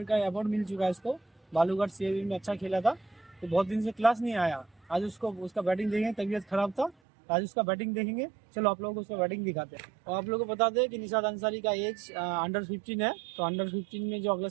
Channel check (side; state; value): left; drops out; at 7.0 s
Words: का अवार्ड मिल चुका है इसको, बालूघाट सीएबी में अच्छा खेला था। तो बहुत दिन से क्लास नहीं आया, आज उसका बैटिंग देखेंगे, तबीयत खराब था, तो आज उसका बैटिंग देखेंगे। चलो आप लोगों को उसका बैटिंग दिखाते हैं। और आप लोगों को बता दें कि निशाद अंसारी का एज अंडर 15 है। तो अंडर 15 में जो अगला